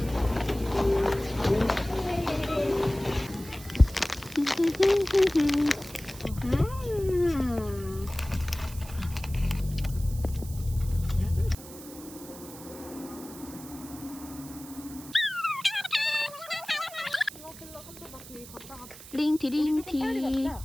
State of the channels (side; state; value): right; noise; hiss, 16 dB below the sound